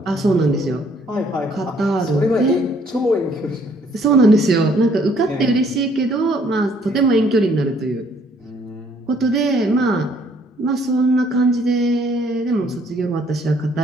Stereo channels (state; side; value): normal; both; correlation 0.63